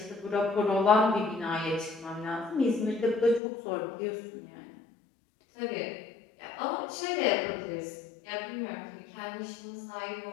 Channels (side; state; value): right; drops out; at 3.4 s